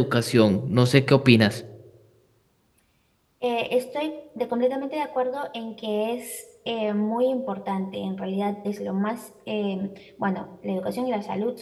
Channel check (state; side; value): identical; both; correlation 1.00